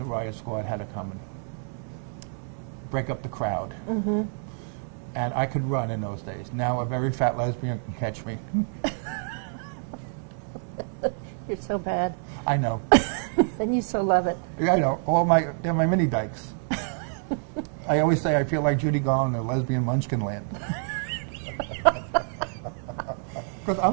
riot squad had to come and break up the crowd. And I could run in those days. Now a very fat lesbian can catch me. You're so bad. I know. And you so love it. Yeah, I know. They're my mini dykes. I always say I feel like Judy Garland in lesbian munchkin land. Because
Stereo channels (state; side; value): silent; left; 60 dB below the other